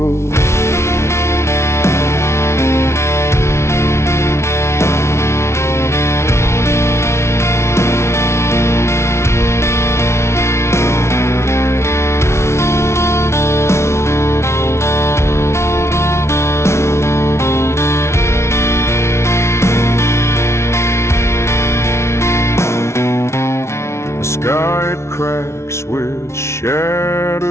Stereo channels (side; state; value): right; late; 0.13 ms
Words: The sky it cracks with